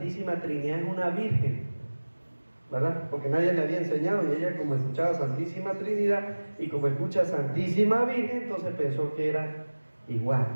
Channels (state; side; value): inverted; both; correlation -1.00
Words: Trinidad es una virgen, ¿verdad? Porque nadie le había enseñado y ella, como escuchaba Santísima Trinidad y como escucha Santísima Virgen, entonces pensó que era igual,